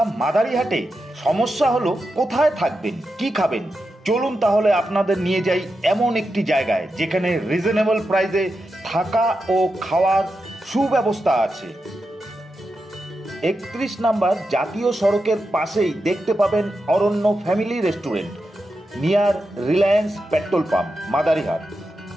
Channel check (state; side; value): normal; both; correlation 0.88